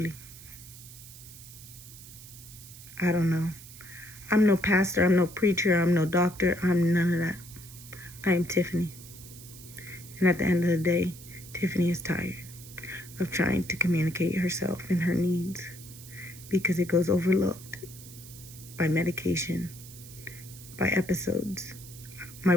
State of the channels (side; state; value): right; noise; hiss, 17 dB below the sound